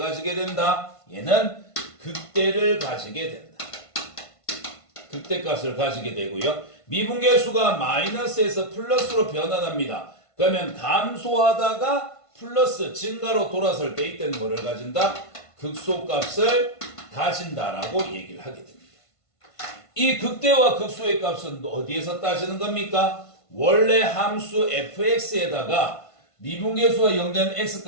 된다? 얘는 극대를 가지게 된다. 극대값을 가지게 되고요. 미분계수가 마이너스에서 플러스로 변환합니다. 그러면 감소하다가 플러스 증가로 돌아설 때 이때는 뭐를 가진다? 극소값을 가진다라고 얘기를 하게 됩니다. 이 극대와 극소의 값은 어디에서 따지는 겁니까? 원래 함수 fx에다가 미분계수가 0 된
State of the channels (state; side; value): late; right; 1.5 ms